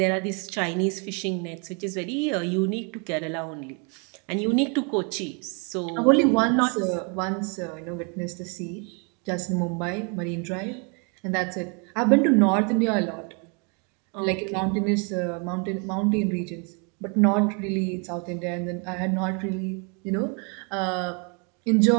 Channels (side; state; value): left; quieter; 35.3 dB